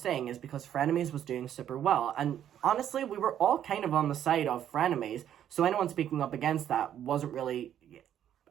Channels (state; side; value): quieter; left; 10.4 dB